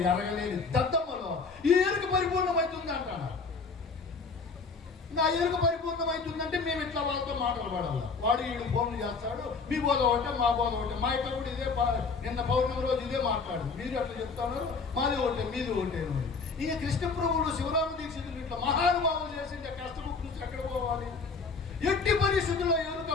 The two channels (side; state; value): right; quieter; 4.6 dB